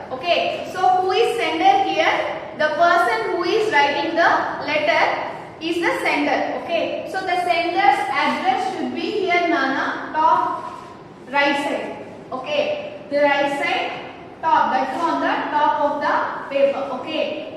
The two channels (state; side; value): identical; both; correlation 1.00